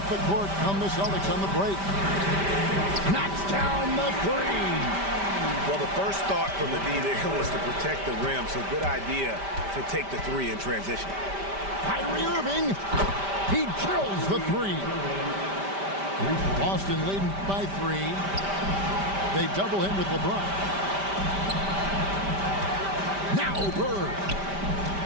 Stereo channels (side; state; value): left; late; 5.1 ms